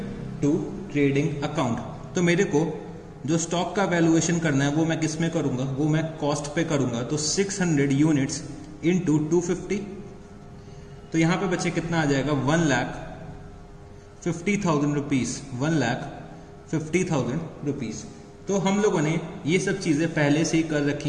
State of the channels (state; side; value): identical; both; correlation 1.00